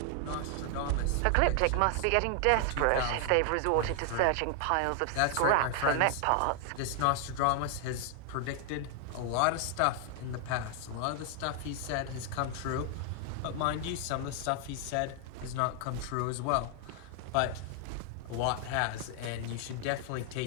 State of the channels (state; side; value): different; both; correlation 0.00